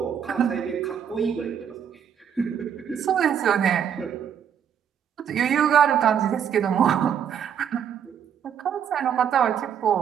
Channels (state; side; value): quieter; left; 8.4 dB